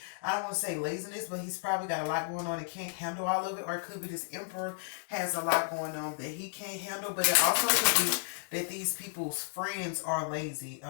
I don't want to say laziness, but he's probably got a lot going on and can't handle all of it, or it could be this Emperor has a lot going on that he can't handle. But it also could be that these people's friends are lazy.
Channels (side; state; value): right; silent; digital silence